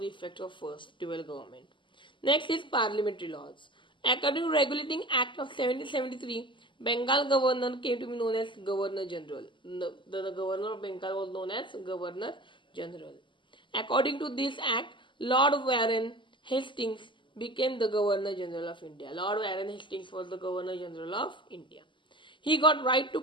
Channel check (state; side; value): late; right; 0.24 ms